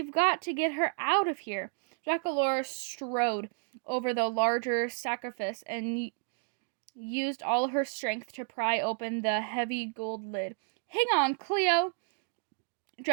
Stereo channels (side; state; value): left; silent; 57 dB below the other